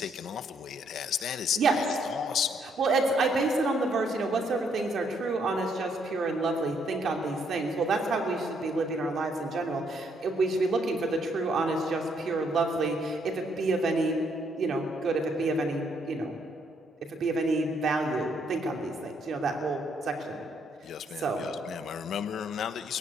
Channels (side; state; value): both; normal; correlation 0.71